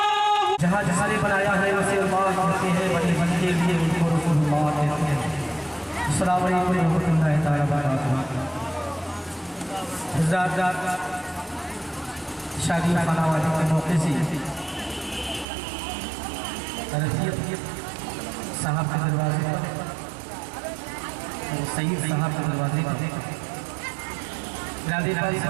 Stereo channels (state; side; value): drops out; left; at 15.5 s